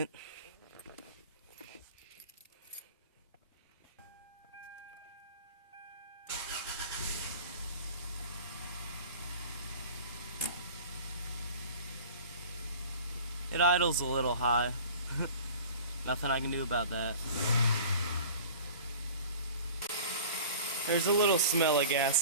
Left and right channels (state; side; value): inverted; both; correlation -0.42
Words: It idles a little high. Nothing I can do about that. There's a little smell of